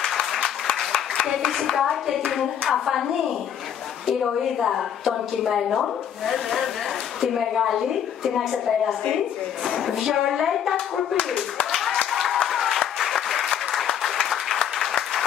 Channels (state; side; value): quieter; right; 9.1 dB